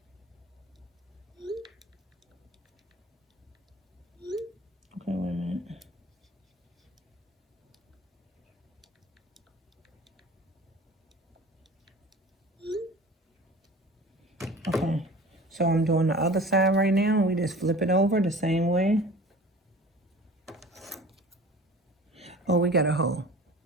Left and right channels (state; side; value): normal; both; correlation 0.42